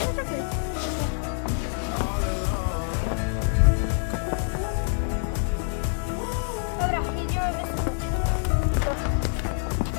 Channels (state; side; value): silent; right; 56 dB below the other